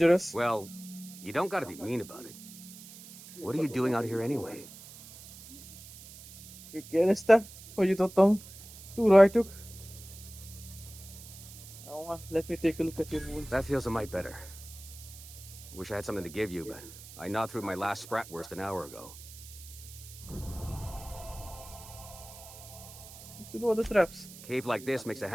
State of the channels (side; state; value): right; noise; hiss, 16 dB below the sound